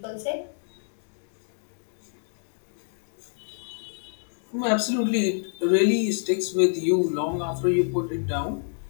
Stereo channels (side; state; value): right; silent; digital silence